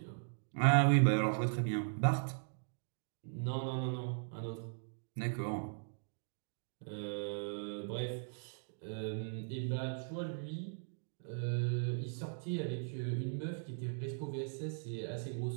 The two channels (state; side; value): silent; left; digital silence